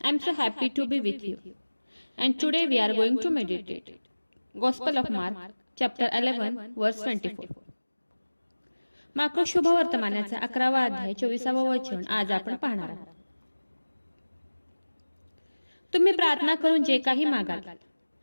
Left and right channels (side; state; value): both; inverted; correlation -1.00